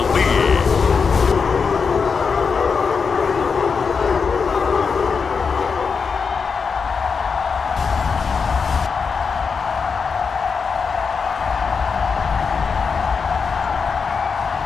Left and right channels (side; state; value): right; quieter; 5.5 dB